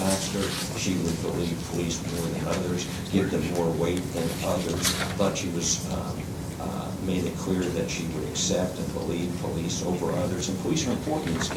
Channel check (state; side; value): identical; both; correlation 1.00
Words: she would believe police more than others, give them more weight than others. Thought she was made it clear that she would accept and believe police over others. And police are important in this